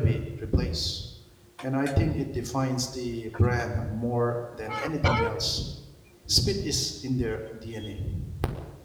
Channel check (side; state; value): both; identical; correlation 1.00